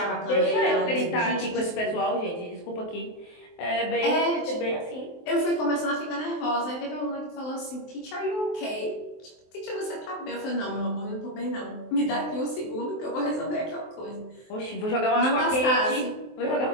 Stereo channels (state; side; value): late; right; 23 ms